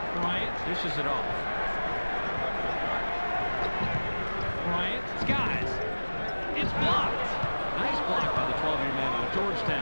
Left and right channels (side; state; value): both; inverted; correlation -1.00